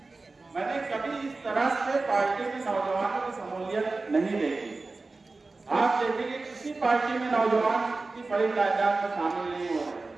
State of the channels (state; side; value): quieter; left; 3.6 dB